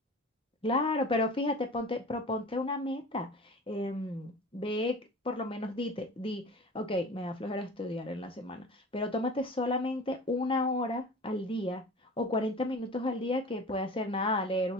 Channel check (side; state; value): both; normal; correlation 0.38